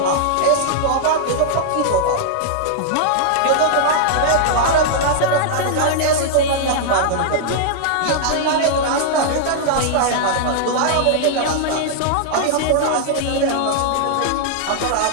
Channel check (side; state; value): both; different; correlation -0.01